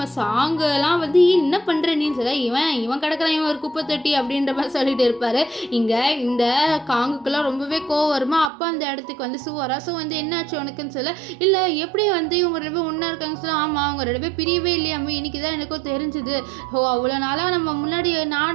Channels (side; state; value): left; drops out; at 8.5 s